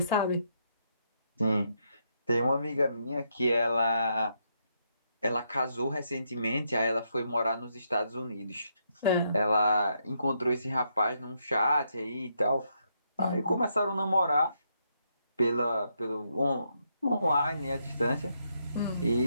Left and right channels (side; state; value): both; inverted; correlation -0.78